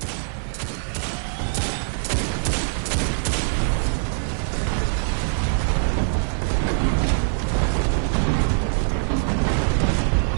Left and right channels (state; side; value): silent; left; 59 dB below the other